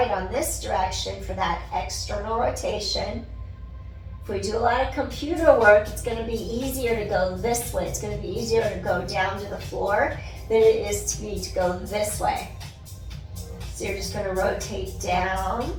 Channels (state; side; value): identical; both; correlation 1.00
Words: on this direction for that external rotation. If we do a lot of computer work, it's going to be easier to go this way. It's going to be easier to go down to the floor than it is to go this way. So you're just going to rotate down